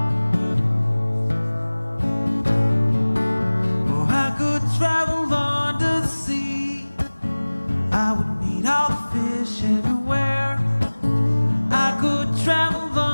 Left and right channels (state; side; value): inverted; both; correlation -1.00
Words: Travel under the sea, I would meet all the fish everywhere. I could travel